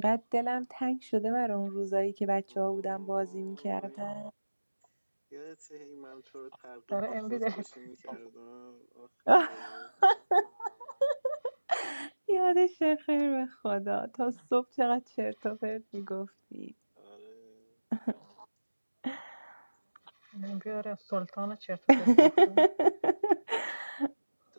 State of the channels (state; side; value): inverted; both; correlation -1.00